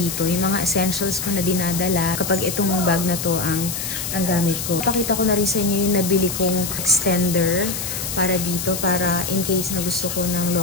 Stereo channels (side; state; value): left; noise; hiss, 4 dB below the sound